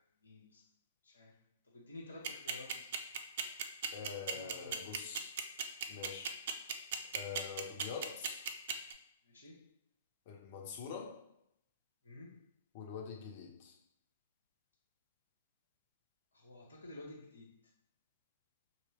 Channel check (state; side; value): inverted; both; correlation -0.41